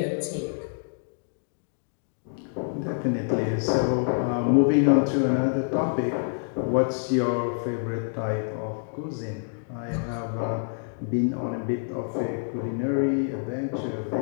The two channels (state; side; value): silent; right; digital silence